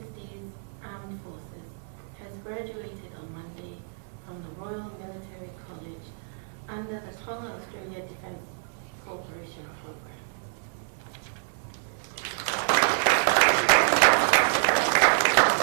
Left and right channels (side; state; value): left; silent; 57 dB below the other